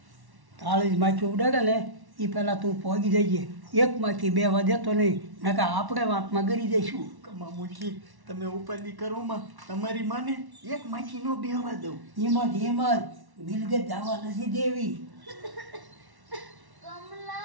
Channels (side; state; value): left; late; 1.1 ms